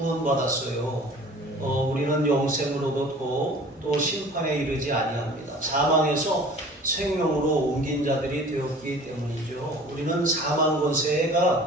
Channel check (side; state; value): both; normal; correlation 0.46